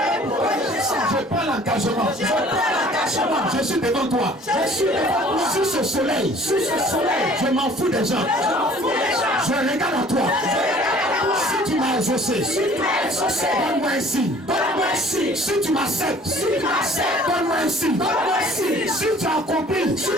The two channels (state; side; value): normal; both; correlation 0.52